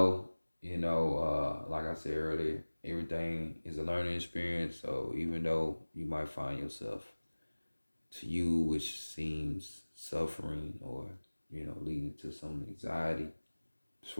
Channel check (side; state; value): both; inverted; correlation -1.00